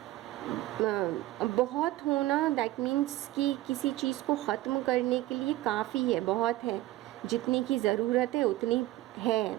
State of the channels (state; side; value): quieter; left; 16.5 dB